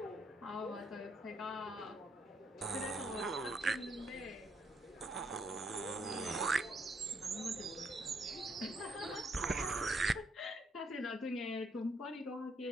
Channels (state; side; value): normal; both; correlation 0.73